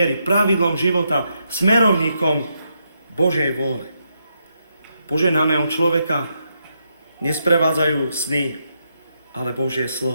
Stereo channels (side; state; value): both; inverted; correlation -0.81